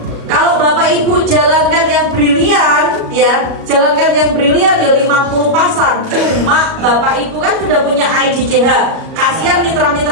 Kalau Bapak Ibu jalankan yang brilian, ya jalankan yang brilian ya 50 pasang. Cuma Bapak Ibu kan sudah punya IDCH. Kasihan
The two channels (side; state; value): left; late; 37 ms